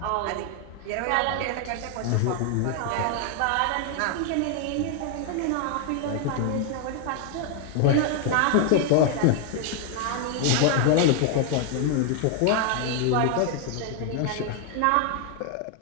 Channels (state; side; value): different; both; correlation 0.00